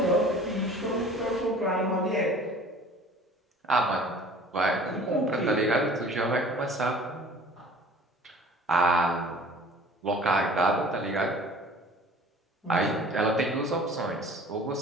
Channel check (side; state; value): both; normal; correlation 0.47